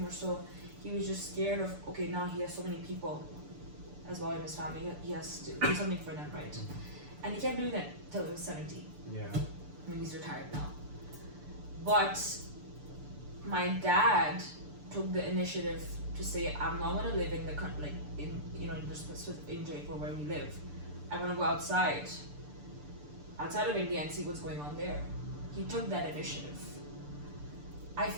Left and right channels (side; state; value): left; late; 6.8 ms